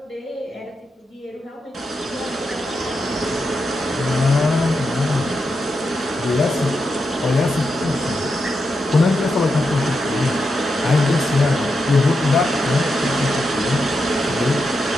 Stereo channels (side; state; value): both; normal; correlation 0.86